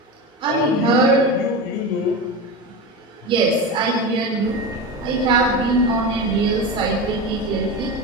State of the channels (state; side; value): normal; both; correlation 0.23